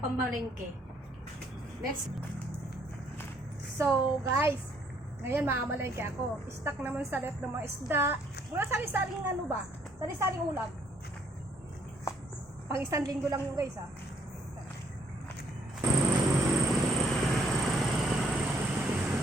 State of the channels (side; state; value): both; normal; correlation 0.68